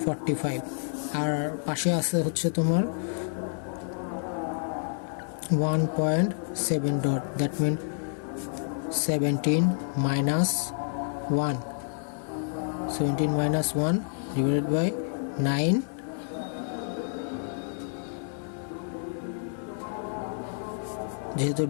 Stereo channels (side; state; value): right; silent; 59 dB below the other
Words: 45। আর পাশে আছে হচ্ছে তোমার 1.7 dot that mean 17 minus 1 divided by 9 যেহেতু